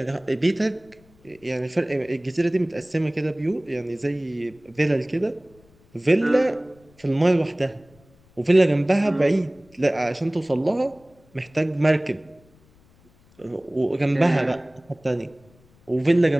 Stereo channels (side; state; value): left; noise; rumble, 30 dB below the sound